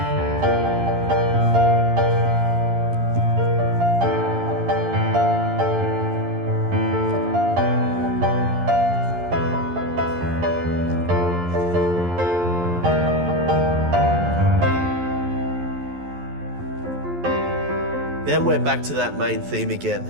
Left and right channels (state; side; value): late; left; 11 ms